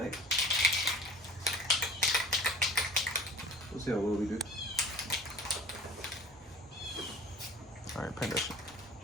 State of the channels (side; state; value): both; normal; correlation 0.44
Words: Let's see how well we do. All right, paint that shit.